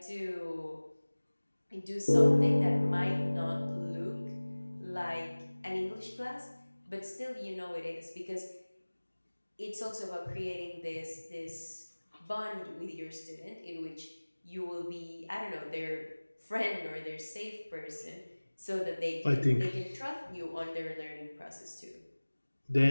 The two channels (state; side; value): inverted; both; correlation -1.00